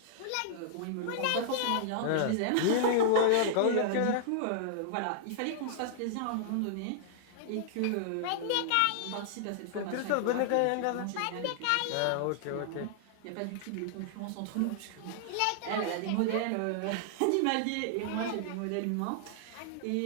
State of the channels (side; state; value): both; different; correlation -0.01